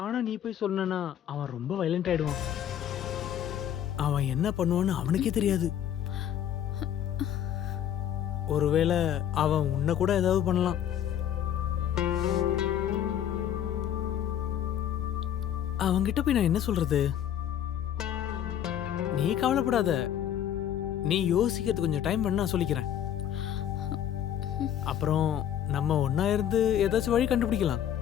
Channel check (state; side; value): quieter; right; 10.2 dB